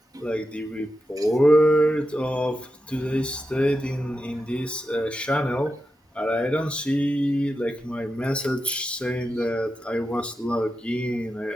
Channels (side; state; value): both; normal; correlation 0.89